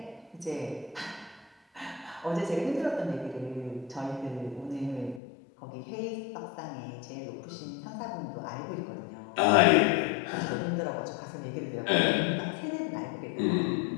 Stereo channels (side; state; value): right; drops out; at 5.2 s